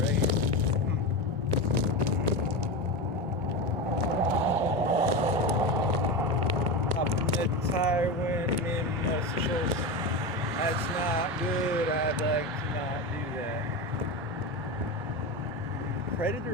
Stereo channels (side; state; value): both; normal; correlation 0.20